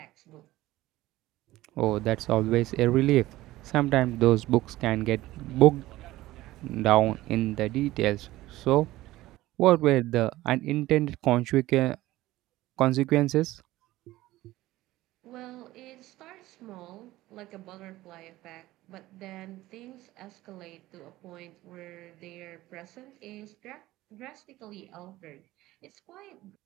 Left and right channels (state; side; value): quieter; left; 16.9 dB